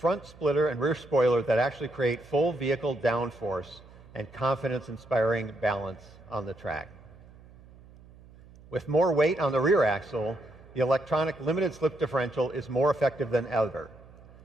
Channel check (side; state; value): right; noise; hum, 22 dB below the sound